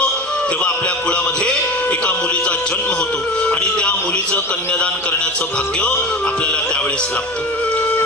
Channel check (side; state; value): both; normal; correlation 0.31